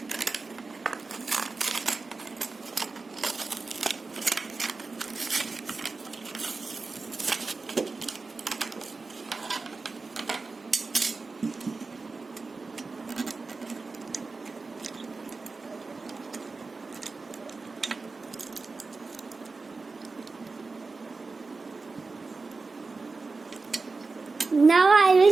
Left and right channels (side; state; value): left; quieter; 4.0 dB